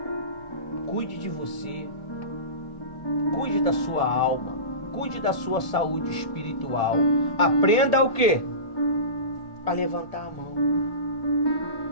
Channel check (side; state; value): right; late; 1.8 ms